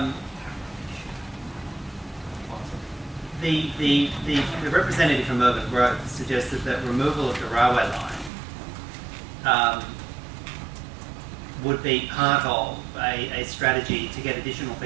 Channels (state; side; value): drops out; left; at 8.3 s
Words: The representative from Urban Growth suggested that removal of the railway line would be part of a strategy to get additional